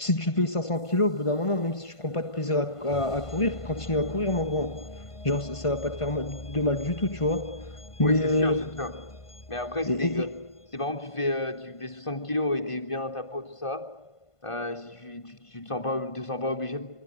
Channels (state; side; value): late; right; 1.5 ms